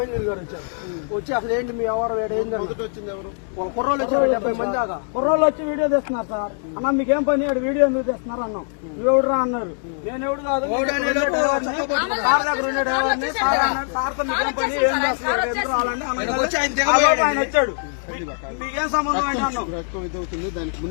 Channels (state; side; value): silent; right; digital silence